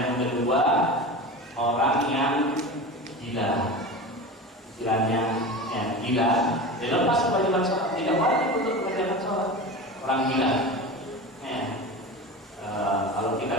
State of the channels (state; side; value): normal; both; correlation 0.29